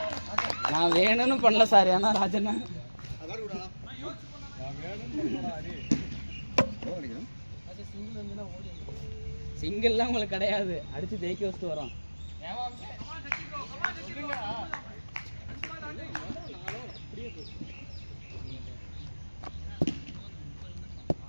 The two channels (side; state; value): both; inverted; correlation -1.00